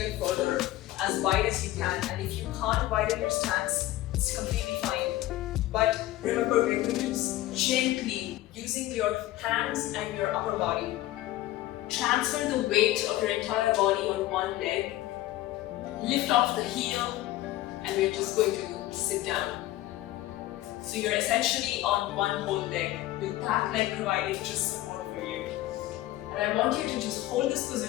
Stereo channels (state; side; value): quieter; right; 15.7 dB